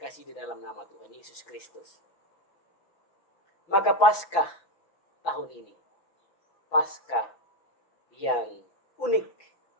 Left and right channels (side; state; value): right; late; 5.8 ms